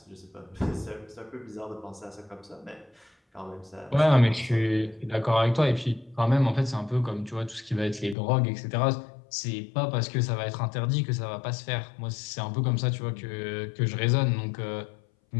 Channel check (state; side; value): drops out; right; at 8.2 s